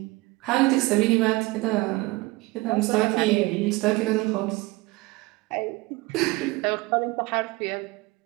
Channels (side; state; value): left; quieter; 22.1 dB